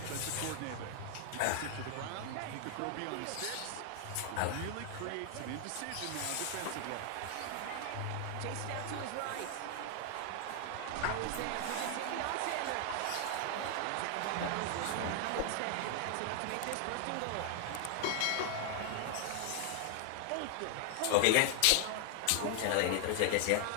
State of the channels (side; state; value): both; different; correlation 0.00